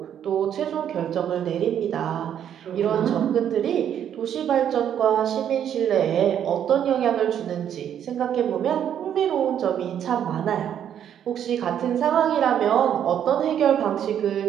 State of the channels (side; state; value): left; quieter; 9.5 dB